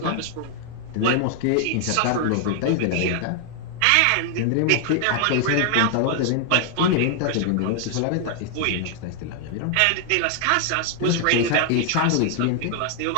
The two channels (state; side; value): different; both; correlation 0.00